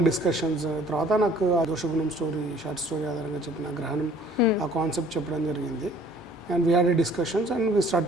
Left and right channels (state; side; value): normal; both; correlation 0.55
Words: discussions. తర్వాత నాకు ఆ దోషగుణం స్టోరీ, షార్ట్ స్టోరీ ఆధారంగా చెప్పిన గ్రహణం ఆ కాన్సెప్ట్ చెప్పడం జరిగింది. And we had a discussions and we